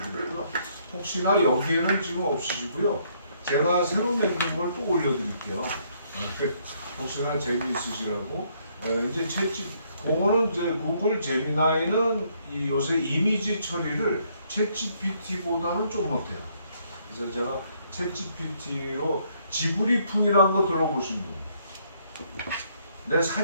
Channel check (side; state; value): both; inverted; correlation -0.69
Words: 혹시나 여기에는 지금 없으시고요. 제가 새로 만든 걸 또 올려드릴게요. 혹시나 재미있으시라고. 이제 그거는 이제 구글 제미나이는 요새 이미지 처리를 챗GPT보다는 좀 못해요. 그래서 제가 챗GPT로 지브리풍이라는 거 들어보신 분. 내